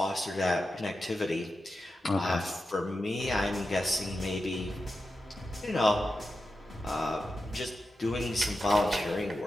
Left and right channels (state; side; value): normal; both; correlation 0.90